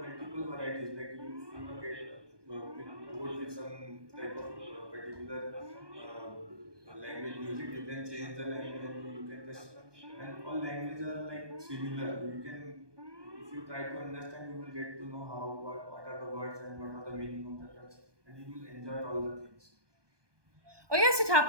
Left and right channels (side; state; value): left; late; 1.2 ms